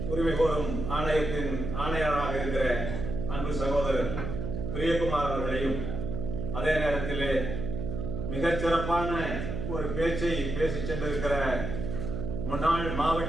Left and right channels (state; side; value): noise; right; hum, 4 dB below the sound